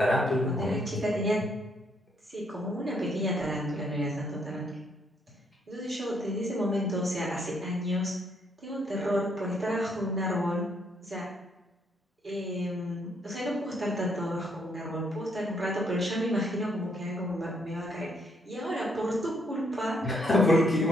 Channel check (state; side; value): normal; both; correlation 0.72